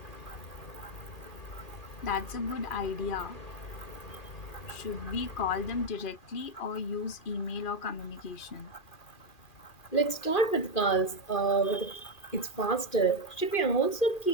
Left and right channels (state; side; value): late; right; 2.4 ms